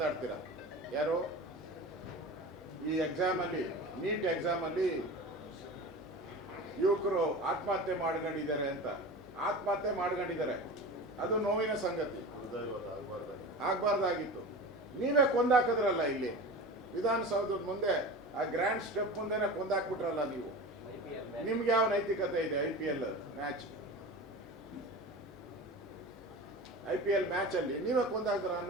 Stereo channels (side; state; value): both; normal; correlation 0.32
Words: ಯಾರು? ಈ ಎಕ್ಸಾಮಲ್ಲಿ, ನೀಟ್ ಎಕ್ಸಾಮಲ್ಲಿ ಯುವಕರು ಆತ್ಮಹತ್ಯೆ ಮಾಡ್ಕೊಂಡಿದ್ದಾರೆ ಅಂತ. ಆತ್ಮಹತ್ಯೆ ಮಾಡ್ಕೊಂಡಿದ್ದಾರೆ, ಅದು ನೋವಿನ ಸಂಗತಿ. ಆಗ್ಬಾರ್ದಾಗಿತ್ತು. ನೀವೇ ಕೊಂದಾಕಿದ್ರಲ್ಲ ಇಲ್ಲಿ ವಿಧಾನಸೌಧದ ಮುಂದೆ, ಆ ಗ್ರ್ಯಾಂಡ್ ಸ್ಟೆಪ್ ಮುಂದೆನೆ ಕೊಂದಾಕ್ಬಿಟ್ರಲ್ಲ ನೀವು. ನಿಮ್ಗೆ ಯಾವ ನೈತಿಕತೆ ಇದೆ? IPL ಮ್ಯಾಚ್ ಅಲ್ಲಿ ನೀವೇ ಕೊಂದಾಕ್ದ್ರ